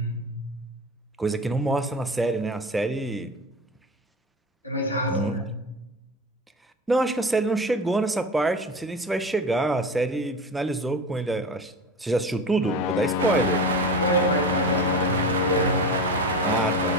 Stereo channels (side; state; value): both; normal; correlation 0.29